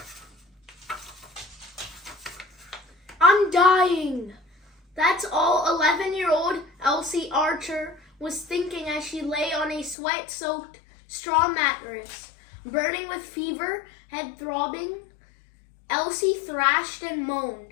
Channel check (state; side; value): drops out; right; at 10.0 s